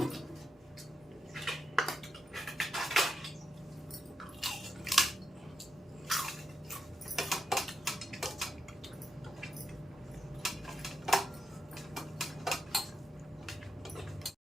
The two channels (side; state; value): both; normal; correlation 0.84